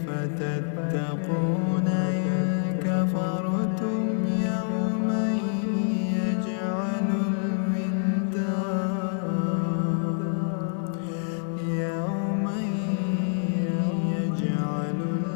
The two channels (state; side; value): silent; right; 60 dB below the other